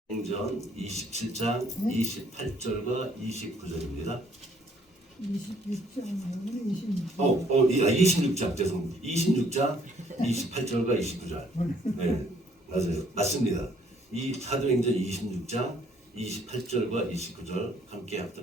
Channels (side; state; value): both; normal; correlation 0.63